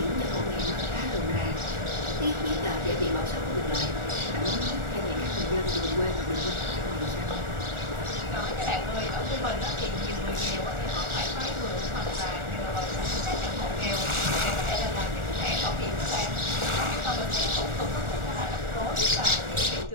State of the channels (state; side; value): late; left; 1.4 ms